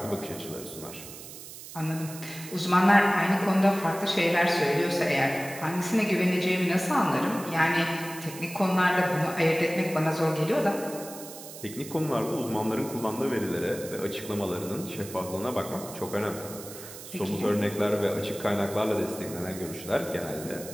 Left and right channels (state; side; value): noise; right; hiss, 14 dB below the sound